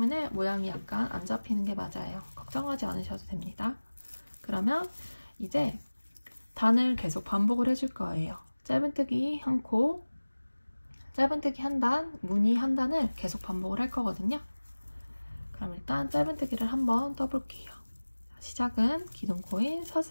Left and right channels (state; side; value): inverted; both; correlation -1.00